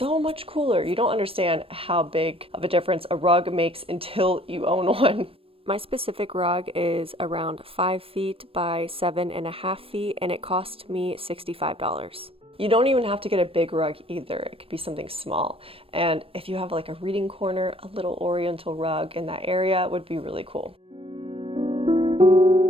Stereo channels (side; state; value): left; late; 0.27 ms